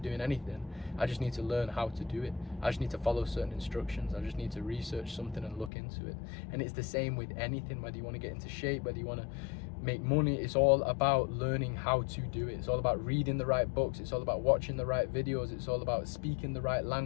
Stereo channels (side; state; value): right; drops out; at 5.7 s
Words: doing anything. I just need to learn how to do it. I just need to follow certain instructions. I just need to research something and look into it. And it's the same with anything, whether you want to get into shape, whether you want to make money. It's all about learning how to do it. It's all about reading the right books. It's all about watching the right videos. It's all about speaking the right